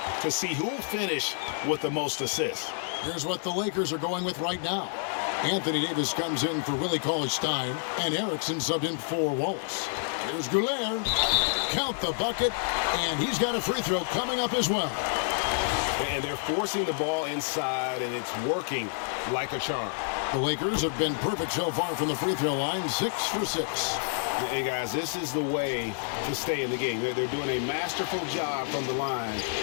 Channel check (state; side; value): silent; right; digital silence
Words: to see who will finish with the most assists. Here's what the Lakers are going with right now. Anthony Davis comes in for Willie Cauley-Stein, and Erickson subbed in for Wallace. Here's Goulet. Count the bucket, and he's got a free throw coming up as well. And they're forcing the ball inside, and it's working like a charm. The Lakers have been perfect so far from the free throw line, 6 for 6. And guys, this is the way to stay in the game. They're doing a masterful job from the line.